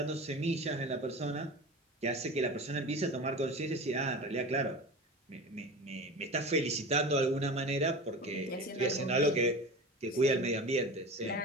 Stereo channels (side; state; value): both; normal; correlation 0.32